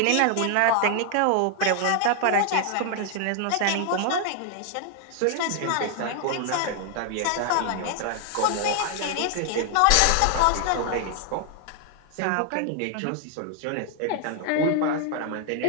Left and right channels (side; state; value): both; different; correlation 0.00